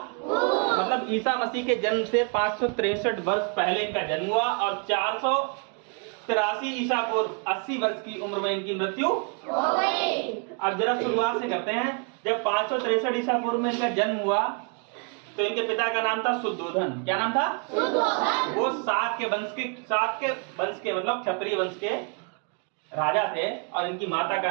मतलब ईसा मसीह के जन्म से 563 वर्ष पहले इनका जन्म हुआ और 483 ईसा पूर्व 80 वर्ष की उम्र में इनकी मृत्यु हो गई। अब जरा शुरुआत से करते हैं। जब 563 ईसा पूर्व में इनका जन्म हुआ तो इनके पिता का नाम था शुद्धोधन। क्या नाम था? शुद्धोधन। वो शाक के वंश के मतलब क्षत्रिय वंश के राजा थे और इनकी माता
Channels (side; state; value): left; quieter; 38.3 dB